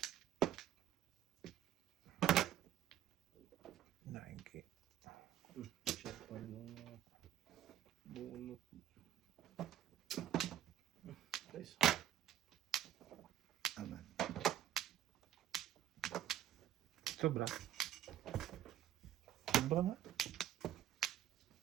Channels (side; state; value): left; quieter; 11.9 dB